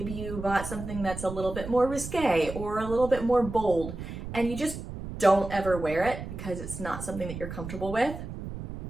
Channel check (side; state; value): right; noise; rumble, 9 dB below the sound